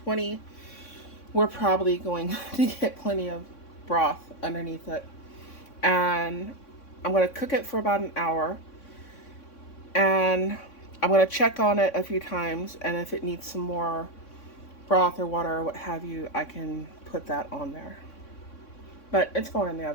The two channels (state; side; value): late; right; 3.6 ms